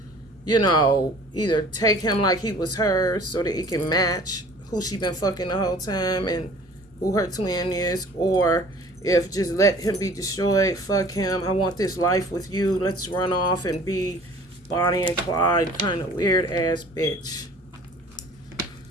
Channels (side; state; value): both; normal; correlation 0.49